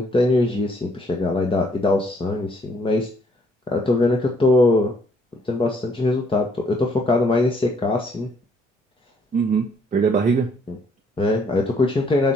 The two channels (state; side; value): normal; both; correlation 0.66